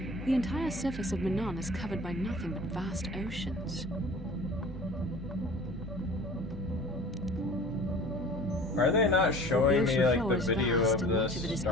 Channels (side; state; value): both; normal; correlation 0.44